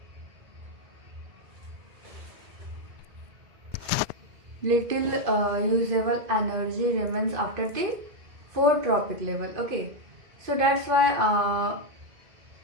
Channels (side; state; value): left; late; 2.5 ms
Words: usable energy remains after the 4 tropic level. Okay, so that's why